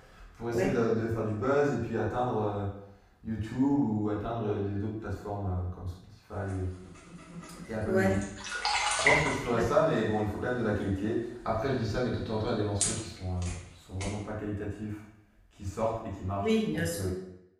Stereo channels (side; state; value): both; identical; correlation 1.00